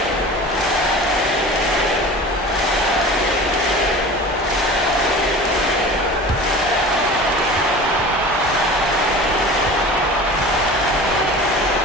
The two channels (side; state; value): both; normal; correlation 0.38